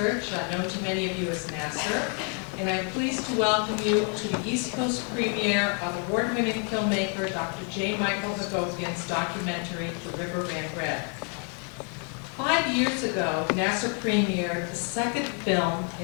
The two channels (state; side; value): quieter; right; 39.8 dB